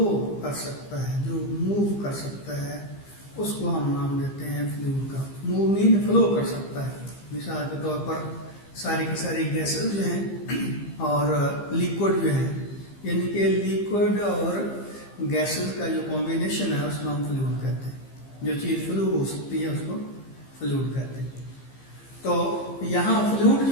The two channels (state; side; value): late; right; 15 ms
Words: कर सकता है, जो मूव कर सकता है, उसको हम नाम देते हैं फ्लूइड का। मूव मीन फ्लो कर सकता है। मिसाल के तौर पर सारी की सारी गैसेस जो हैं और लिक्विड जो हैं, यानी कि लिक्विड और गैसेस का जो कॉम्बिनेशन है उसको हम फ्लूइड कहते हैं। जो चीज़ फ्लू हो सकती है उसको फ्लूइड कहते हैं। तो यहाँ फ्लूइड